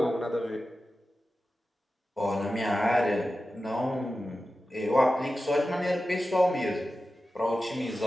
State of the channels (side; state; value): both; normal; correlation 0.93